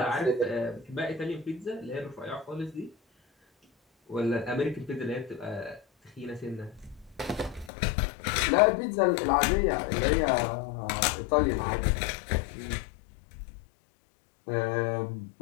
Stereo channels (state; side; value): drops out; right; at 7.7 s